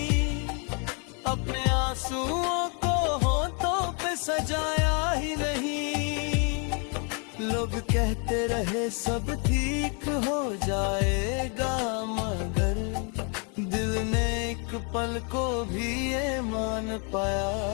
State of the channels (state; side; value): quieter; right; 36.8 dB